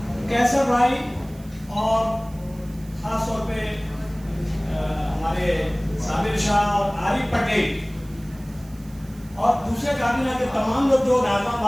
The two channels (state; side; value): noise; right; hiss, 25 dB below the sound